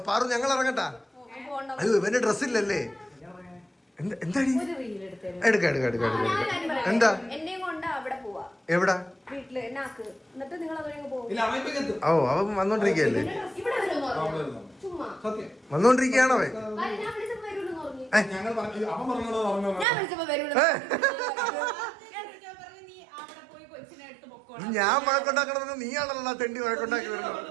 പാറു ഞങ്ങൾ ഇറങ്ങട്ടാ അയ്യോ ഇവന്റെ ഡ്രസ് ഇല്ലല്ലേ എന്താടി എടുക്ക എന്താ എവിടാ ഓ അവൻ വന്നോണ്ടിരിക്കല്ലേ വന്നോണ്ടിരിക്കയാണോ അവൻ ഞാൻ വഴക്കുണ്ടാക്കണമെന്ന് നീയാണല്ലോ തെണ്ടി വഴക്കുണ്ടാക്കി വരുന്നത്.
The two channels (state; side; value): drops out; left; at 19.9 s